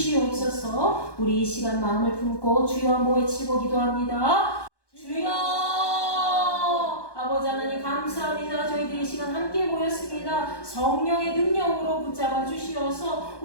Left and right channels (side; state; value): right; late; 1.1 ms